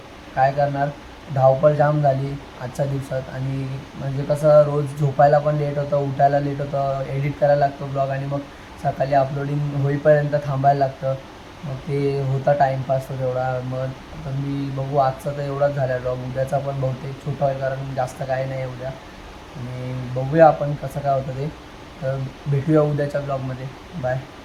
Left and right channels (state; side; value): identical; both; correlation 1.00